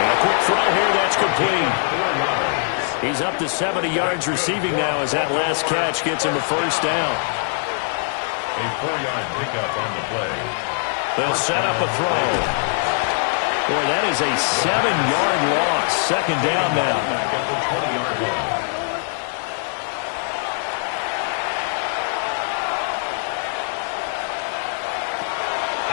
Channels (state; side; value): silent; right; digital silence